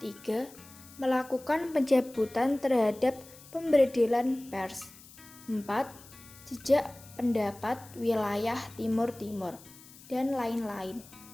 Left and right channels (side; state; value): left; noise; hiss, 21 dB below the sound